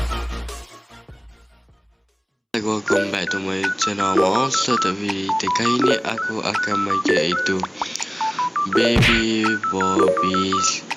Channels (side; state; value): both; identical; correlation 1.00